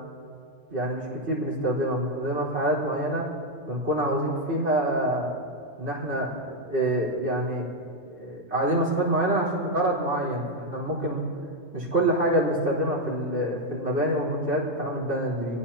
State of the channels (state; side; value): normal; both; correlation 0.03